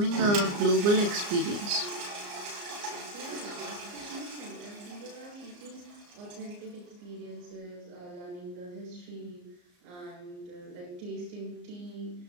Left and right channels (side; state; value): left; late; 34 ms